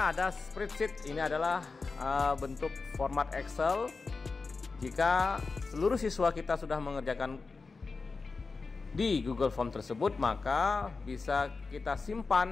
ada spreadsheet. Ini adalah bentuk format Excel. Jika seluruh siswa kita sudah mengerjakan di Google Form tersebut, maka bisa kita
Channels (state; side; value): quieter; right; 4.2 dB